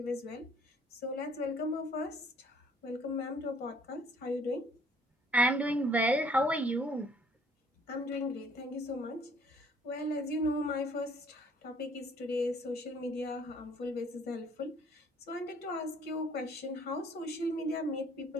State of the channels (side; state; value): both; normal; correlation 0.59